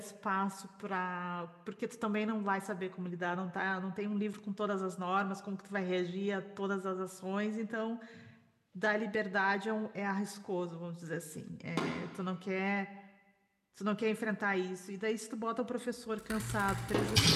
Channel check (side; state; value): both; identical; correlation 1.00